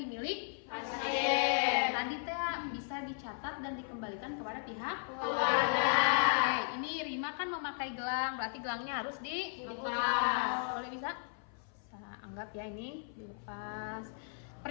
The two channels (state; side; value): silent; right; 54 dB below the other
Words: Pasien. Tadi teh bisa dicatat dan dikembalikan kepada pihak Keluarga. Oke, ini Rima kan memakai gelang, berarti gelangnya harus dilepas. Boleh bisa? Saya anggap ya ini dilepas.